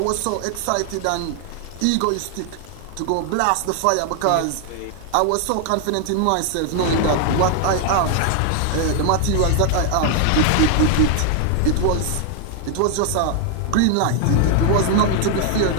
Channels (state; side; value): different; both; correlation 0.00